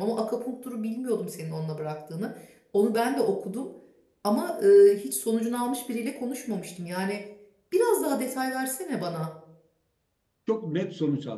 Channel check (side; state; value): both; identical; correlation 1.00